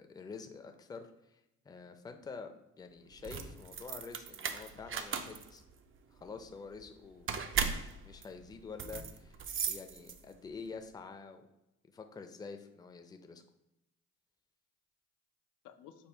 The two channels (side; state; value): left; quieter; 3.6 dB